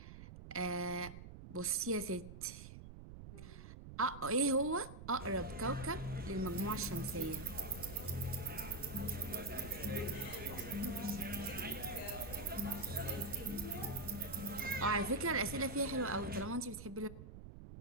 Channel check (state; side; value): noise; right; rumble, 12 dB below the sound